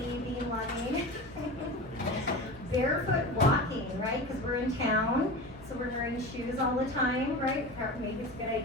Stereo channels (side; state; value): both; normal; correlation 0.29